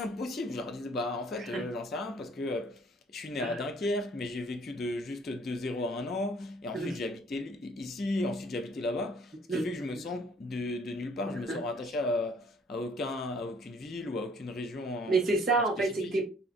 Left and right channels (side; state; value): both; normal; correlation 0.59